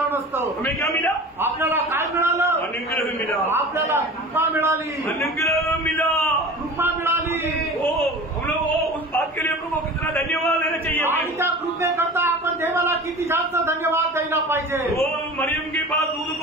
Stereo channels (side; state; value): both; normal; correlation 0.37